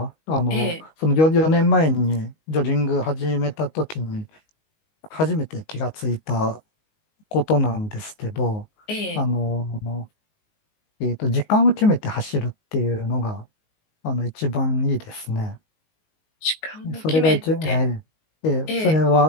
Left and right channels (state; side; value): late; right; 19 ms